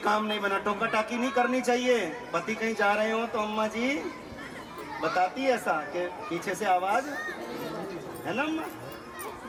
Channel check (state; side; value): identical; both; correlation 1.00